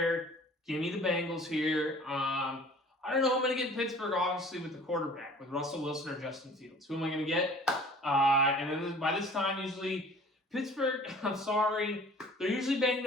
Give me the Bengals here. I don't know who I'm going to get in Pittsburgh, obviously, with the quarterback, with Russell Wilson or Justin Fields. Who am I going to get? And then by this time, usually, Pittsburgh, I'm sorry, they're usually banged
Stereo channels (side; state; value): both; normal; correlation 0.48